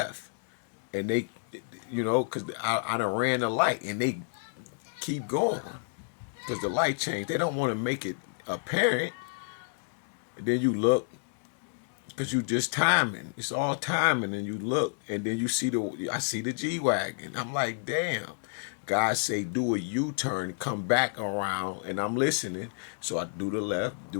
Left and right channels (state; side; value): silent; right; digital silence